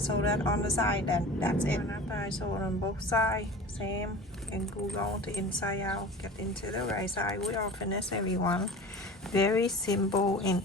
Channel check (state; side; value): normal; both; correlation 0.37